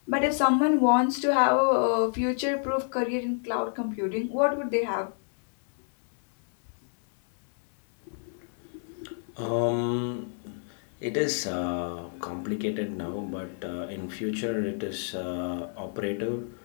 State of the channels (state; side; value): silent; right; 59 dB below the other